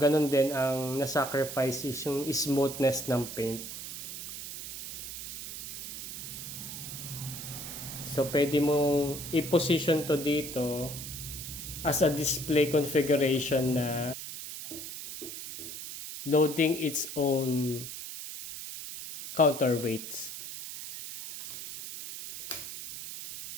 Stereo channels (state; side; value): noise; right; hiss, 9 dB below the sound